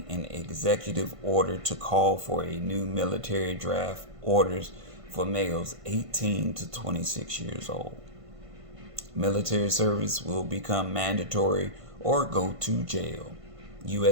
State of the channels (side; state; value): left; late; 1.5 ms